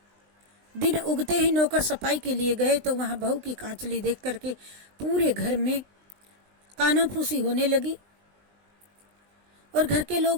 दिन उगते ही नौकर सफाई के लिए गए तो वहां बहू की कांचली देख करके पूरे घर में कानाफूसी होने लगी और घर के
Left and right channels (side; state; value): left; late; 20 ms